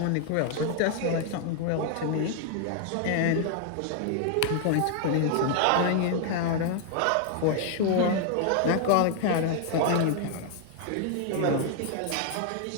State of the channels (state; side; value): different; both; correlation 0.00